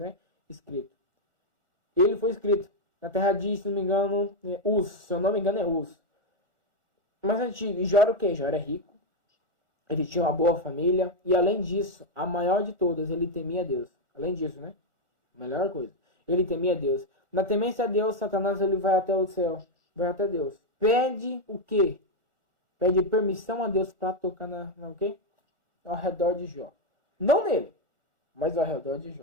Escrito. Ele foi escrito na terra de, se não me engano, Uz. Se eu não me engano, é Uz. Mas antigo, e Jó era o quê? Jó era rico, ele tinha uma boa família, e além disso, a maior de todas, ele temia Deus. Além disso, né? Melhor coisa. Ele temia Deus. Na temência a Deus, Satanás ele vai até o céu, vai até Deus. Pede o quê? Pede permissão a Deus para tocar o quê? Ao redor de Jó. Não nele, mas ao redor de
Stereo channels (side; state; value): left; late; 1.4 ms